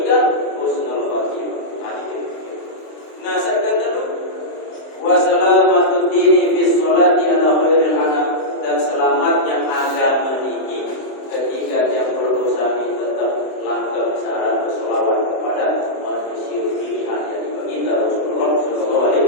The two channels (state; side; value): late; right; 26 ms